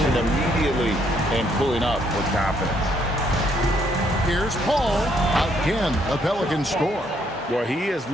immediately and pulling up with confidence. Here's Paul. Again, a Pelican score. Well, he is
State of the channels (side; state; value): both; normal; correlation 0.70